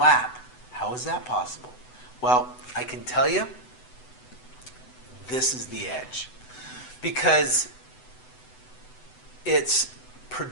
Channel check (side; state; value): right; late; 8.0 ms